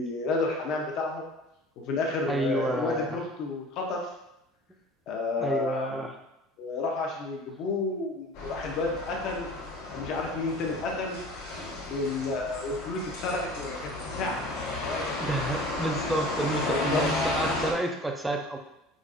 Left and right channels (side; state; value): both; normal; correlation 0.42